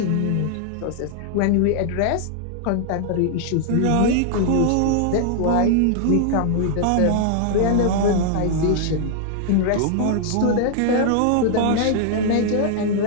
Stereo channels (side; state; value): both; different; correlation -0.01